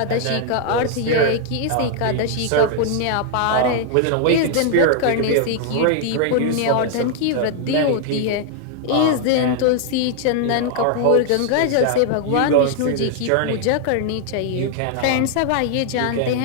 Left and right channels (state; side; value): different; both; correlation 0.00